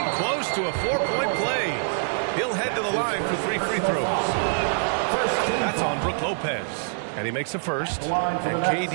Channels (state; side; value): silent; left; digital silence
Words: close to a 4-point play. He'll head to the line for 3 free throws. That's on Brook Lopez. And he makes a first. And